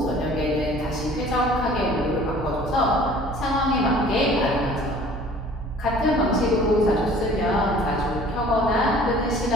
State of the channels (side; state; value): both; normal; correlation 0.50